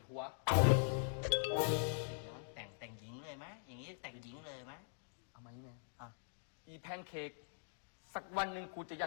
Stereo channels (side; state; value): right; silent; digital silence